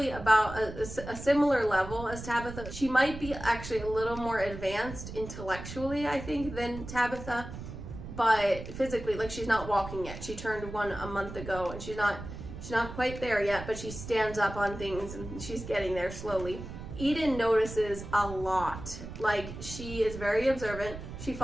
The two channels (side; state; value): right; noise; rumble, 10 dB below the sound